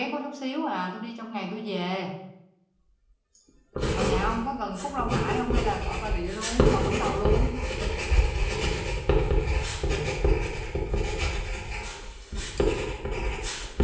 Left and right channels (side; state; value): both; identical; correlation 1.00